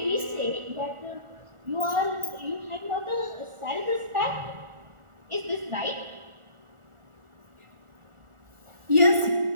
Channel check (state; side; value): late; left; 1.4 ms